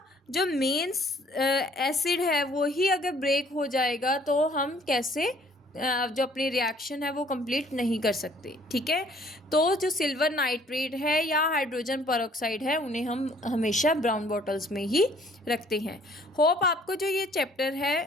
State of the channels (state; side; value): normal; both; correlation 0.59